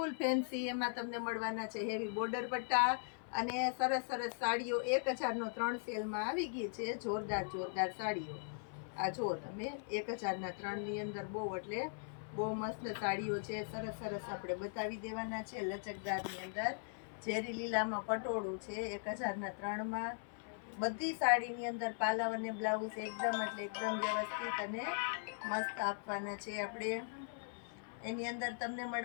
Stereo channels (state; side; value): silent; right; 51 dB below the other